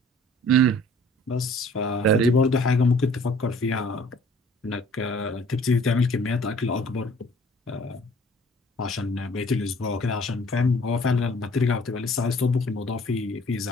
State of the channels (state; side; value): normal; both; correlation 0.54